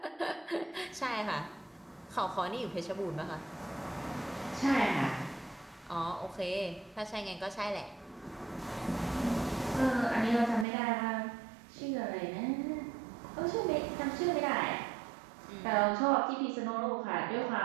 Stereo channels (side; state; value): left; drops out; at 10.7 s